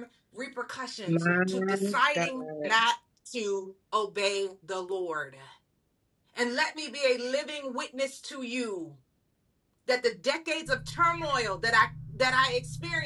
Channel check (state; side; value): identical; both; correlation 1.00